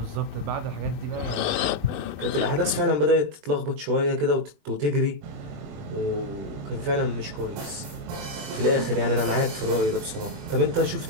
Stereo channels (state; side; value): late; left; 20 ms